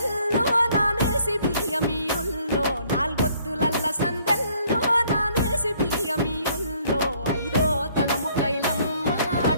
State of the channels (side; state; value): both; inverted; correlation -0.63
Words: నానేసి బియ్యమియుల్లో, నాలుగొత్తులల్ల సందెల్లో నానేసి బియ్యమియుల్లో, ఐదో తనము కైలమ్మ